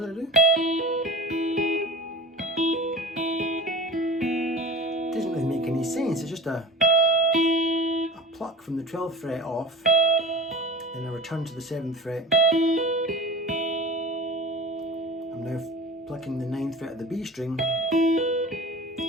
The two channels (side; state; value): both; normal; correlation 0.37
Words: did I do? It doesn't really make any sense. It's just a pluck from the 12th fret off, then I return to the 7th fret. I'm now plucking the 9th fret of the B string, but